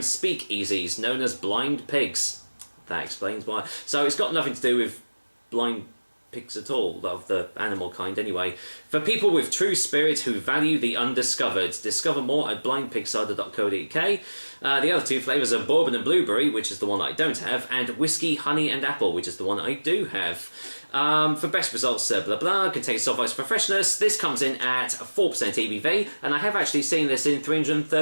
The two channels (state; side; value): inverted; both; correlation -1.00